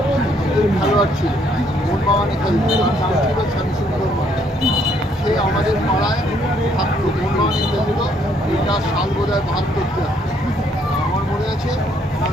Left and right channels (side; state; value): both; normal; correlation 0.68